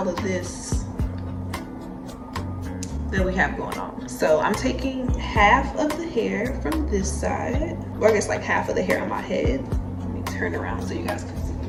of this that we have going on. So I'm taking half of the hair from this side, or I guess like half of the hair on my head. Let me turn around so you guys can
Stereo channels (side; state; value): both; identical; correlation 1.00